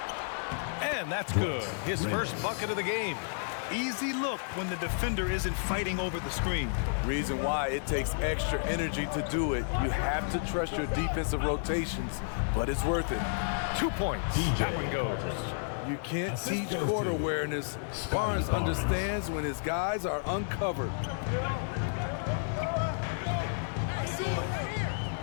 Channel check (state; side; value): silent; right; digital silence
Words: And that's good. His first bucket of the game. Easy look when the defender isn't fighting over the screen. Reason why it takes extra energy to do it. You have to trust your defensive rotations, but it's worth it. 2 points. That one goes. You can't teach court awareness. Barnes understands when his guys are uncovered.